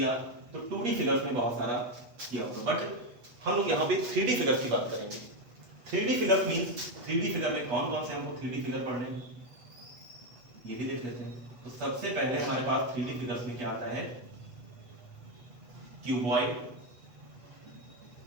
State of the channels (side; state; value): left; late; 8.3 ms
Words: तो 2D फिगर्स में बहुत सारा किया होगा, बट हम लोग यहाँ पे 3D फिगर्स की बात करेंगे। 3D figures means 3D figure में कौन कौन से हमको 3D फिगर पढ़ने हैं ये भी देख लेते हैं। तो सबसे पहले हमारे पास 3D फिगर्स में क्या आता है, क्यूबॉइड।